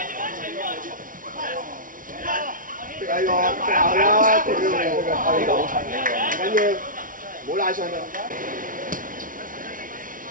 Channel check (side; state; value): left; late; 0.39 ms